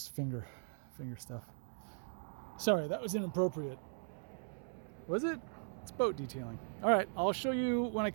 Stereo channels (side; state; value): left; silent; 52 dB below the other